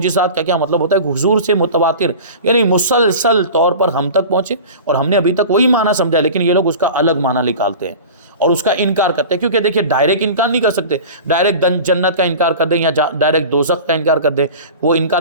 کا کیا مطلب ہوتا ہے کہ حضور سے متواتر یعنی مسلسل طور پر ہم تک پہنچے اور ہم نے ابھی تک وہی معنی سمجھا، لیکن یہ لوگ اس کا الگ معنی نکالتے ہیں اور اس کا انکار کرتے ہیں. کیونکہ دیکھیے ڈائریکٹ انکار نہیں کر سکتے، ڈائریکٹ جنت کا انکار کر دیں یا ڈائریکٹ دوزخ کا انکار کر دیں. وہ انکار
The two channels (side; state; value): both; inverted; correlation -0.36